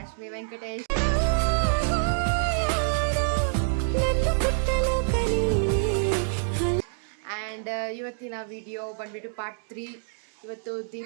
Venkatesh. And ಇವತ್ತಿನ video ಬಂದ್ಬಿಟ್ಟು part 3. ಇವತ್ತು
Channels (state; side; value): silent; left; digital silence